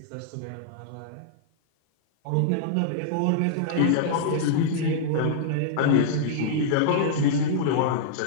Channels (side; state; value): both; different; correlation -0.01